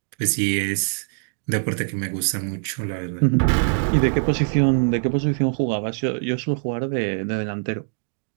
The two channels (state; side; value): silent; left; digital silence